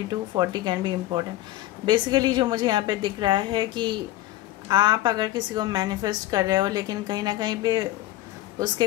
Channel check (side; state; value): right; quieter; 15.6 dB